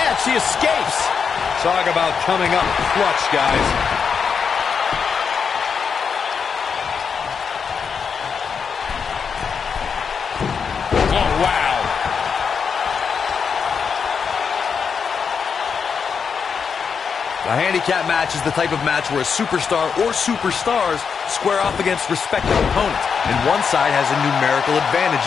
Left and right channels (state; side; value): quieter; right; 6.2 dB